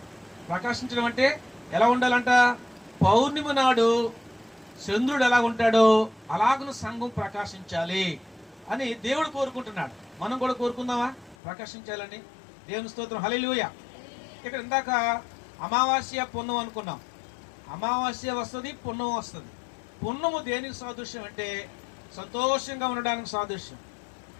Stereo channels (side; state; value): right; drops out; at 11.4 s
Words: ప్రకాశించడం అంటే ఎలా ఉండాలంట? పౌర్ణమి నాడు చంద్రుడు ఎలా ఉంటాడో అలాగను సంఘం ప్రకాశించాలి అని దేవుడు కోరుకుంటున్నాడు. మనం కూడా కోరుకుందామా ప్రకాశించాలని? దేవుని స్తోత్రం, హల్లెలూయా. ఇక్కడ ఇందాక అమావాస్య పున్నం అనుకున్నాం. అమావాస్య వస్తుంది, పున్నం వస్తుంది. పున్నము దేనికి సాదృశ్యం అంటే సంతోషంగా ఉండడానికి సాదృశ్యం,